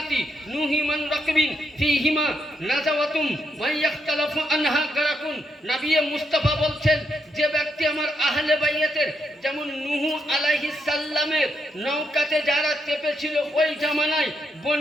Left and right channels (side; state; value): both; normal; correlation 0.80